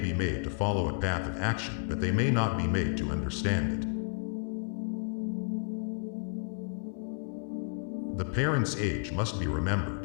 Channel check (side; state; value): right; silent; digital silence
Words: made to follow a path of action, but they may not be made to understand it. The parent's age must be